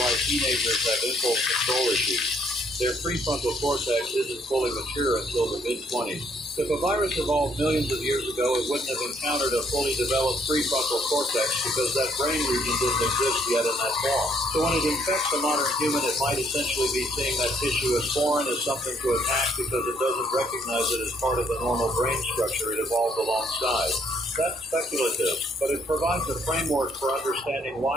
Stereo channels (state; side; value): normal; both; correlation 0.67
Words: teenagers have impulse control issues. Their prefrontal cortex isn't fully mature until the mid-20s. If a virus evolved millions of years ago, it wouldn't have encountered a fully developed prefrontal cortex because that brain region didn't exist yet in that form. So when it infects a modern human, it might essentially be seeing that tissue as foreign, as something to attack because it doesn't recognize it as part of the normal brain structure it evolved alongside. That's speculative, but it provides a framework for understanding